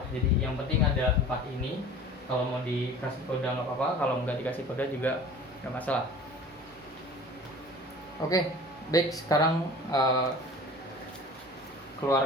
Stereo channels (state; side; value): normal; both; correlation 0.42